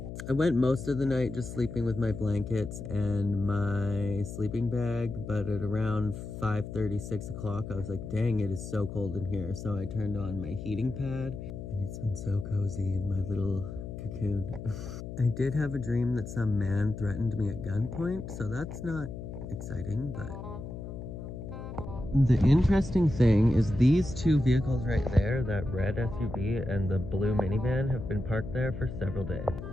I went most of the night just sleeping with my blankets and my sleeping bag, but at around 5:30, 6 o'clock, I was like, dang, it is so cold in here. So I turned on my heating pad, and it's been so cozy in my little cocoon. I did have a dream that some man threatened me at gunpoint, so that's not exciting, but The interesting thing is these two vehicles right there, that red SUV and the blue minivan, have been parked there for several days.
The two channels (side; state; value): left; noise; hum, 9 dB below the sound